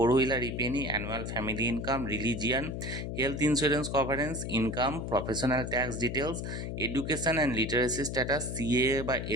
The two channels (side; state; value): left; noise; hum, 5 dB below the sound